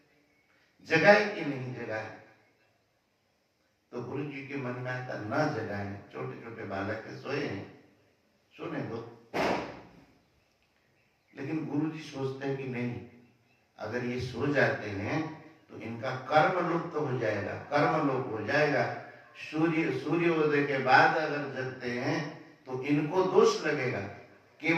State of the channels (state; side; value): identical; both; correlation 1.00